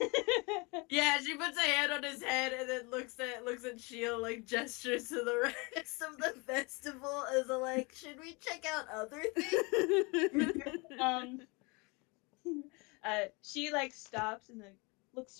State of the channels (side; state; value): right; quieter; 28.4 dB